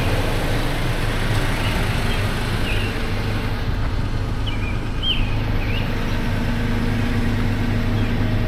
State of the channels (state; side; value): identical; both; correlation 1.00